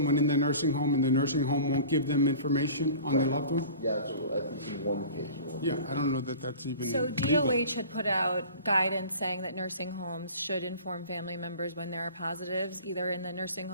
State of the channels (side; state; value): both; inverted; correlation -0.41